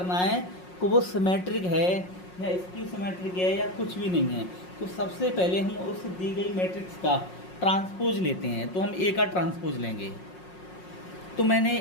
है कि वो सिमेट्रिक है या स्क्यू सिमेट्रिक है या कुछ भी नहीं है, तो सबसे पहले हम उस दी गई मैट्रिक्स का ट्रांसपोज लेते हैं। तो हम ए का ट्रांसपोज लेंगे। तो मैंने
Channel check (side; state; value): right; late; 5.5 ms